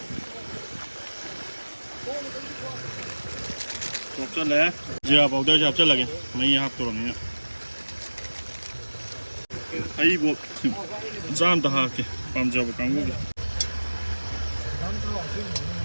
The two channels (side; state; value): both; inverted; correlation -1.00